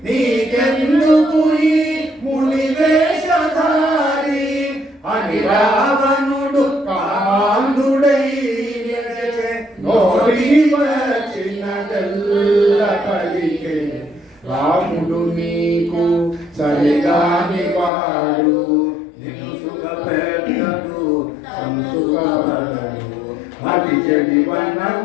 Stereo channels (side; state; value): right; drops out; at 17.9 s